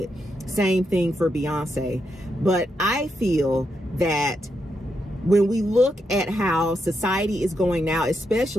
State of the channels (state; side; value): normal; both; correlation 0.82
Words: Same thing for Beyonce. But I feel that when we look at how society is going now,